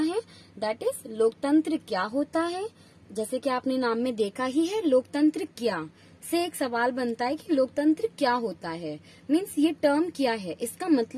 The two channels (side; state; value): both; identical; correlation 1.00